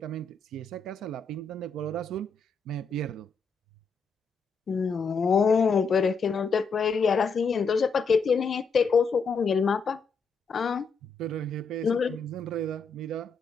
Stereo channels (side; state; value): right; quieter; 4.4 dB